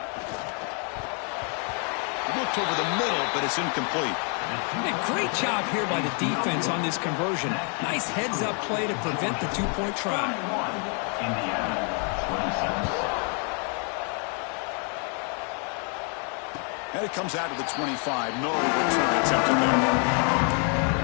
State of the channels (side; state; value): right; quieter; 39.8 dB